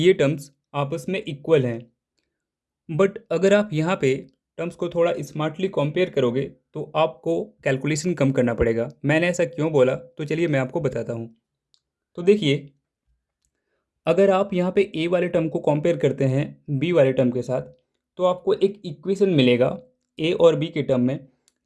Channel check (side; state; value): both; identical; correlation 1.00